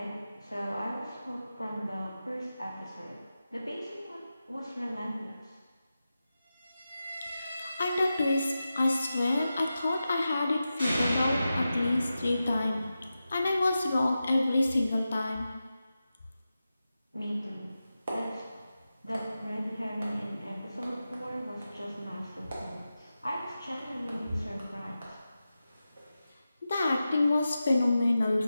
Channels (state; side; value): inverted; both; correlation -0.92